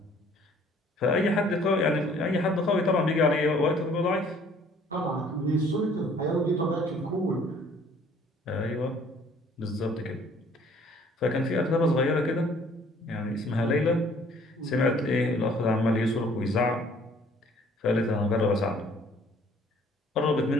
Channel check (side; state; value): both; normal; correlation 0.57